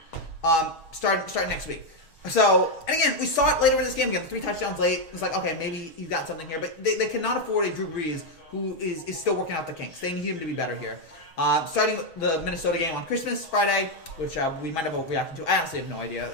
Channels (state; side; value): late; right; 6.2 ms